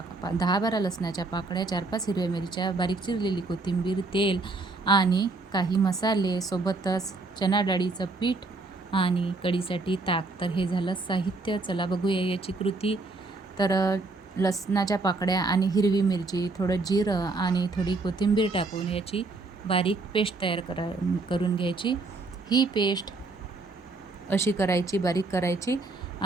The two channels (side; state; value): left; quieter; 3.5 dB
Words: 10-12 लसणाच्या पाकळ्या, 4-5 हिरव्या मिरच्या, बारीक चिरलेली कोथिंबीर, तेल आणि काही मसाले, सोबतच चणा डाळीचं पीठ आणि कढीसाठी ताक. तर हे झालं साहित्य. चला बघूया याची कृती. तर लसणाच्या पाकळ्या आणि हिरवी मिरची, थोडं जिरं आणि थोडी कोथिंबीर टाकून याची बारीक पेस्ट तयार करून घ्यायची. ही पेस्ट अशी करायची, बारीक करायची